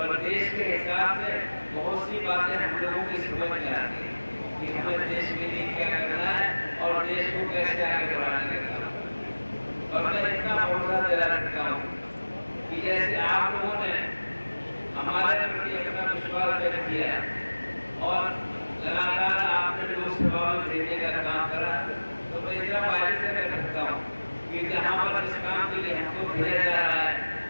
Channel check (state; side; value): inverted; both; correlation -1.00